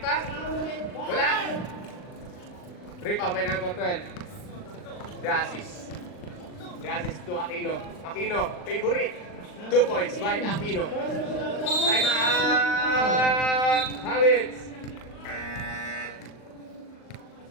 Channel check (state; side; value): late; right; 39 ms